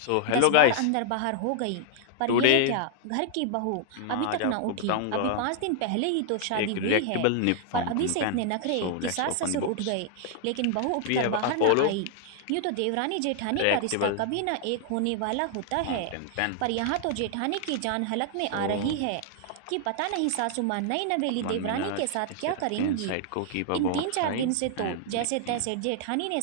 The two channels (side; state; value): both; different; correlation 0.00